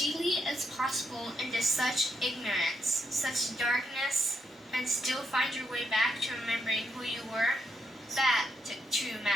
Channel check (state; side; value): normal; both; correlation 0.79